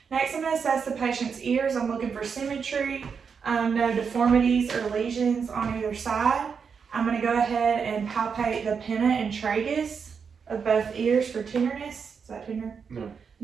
Next, I'm going to assess the patient's ears. I'm looking for symmetry, no deformities or lesions on either side. I'm going to go ahead and palpate the pinna and tragus of both ears for tenderness. Is that tender? No.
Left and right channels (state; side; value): quieter; left; 6.1 dB